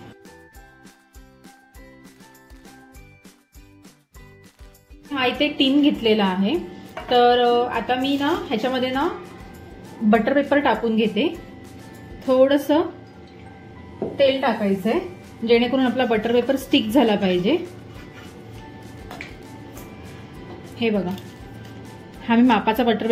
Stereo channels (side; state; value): both; identical; correlation 1.00